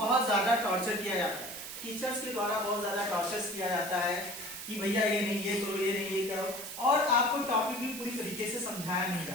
ज्यादा टॉर्चर किया जाता है, टीचर्स के द्वारा बहुत ज्यादा टॉर्चर किया जाता है कि भैया ये नहीं ये करो, ये नहीं ये करो, और आपको टॉपिक भी पूरी तरीके से समझाया नहीं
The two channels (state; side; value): noise; right; hiss, 9 dB below the sound